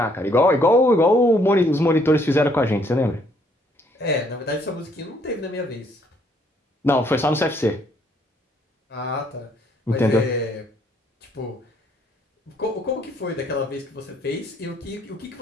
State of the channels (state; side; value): normal; both; correlation 0.67